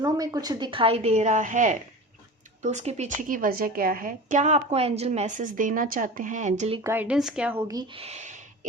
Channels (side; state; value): both; normal; correlation 0.33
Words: में कुछ दिखाई दे रहा है तो उसके पीछे की वजह क्या है, क्या आपको एंजल मैसेज देना चाहते हैं, एंजलिक गाइडेंस क्या होगी।